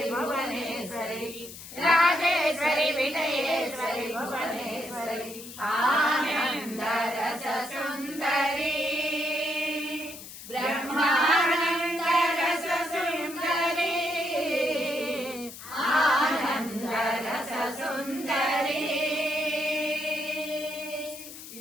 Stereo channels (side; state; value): left; noise; hiss, 14 dB below the sound